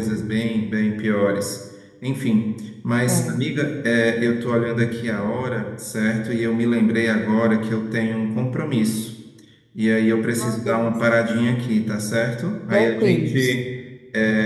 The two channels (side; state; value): both; identical; correlation 1.00